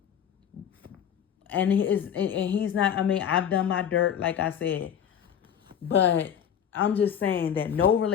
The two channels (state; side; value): quieter; right; 8.7 dB